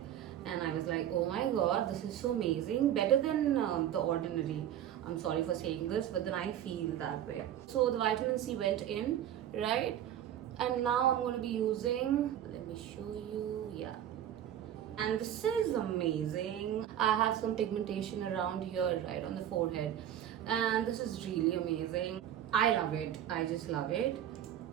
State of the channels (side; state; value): left; quieter; 10.9 dB